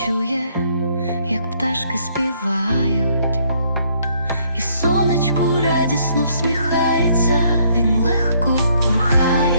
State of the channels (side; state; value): both; inverted; correlation -0.67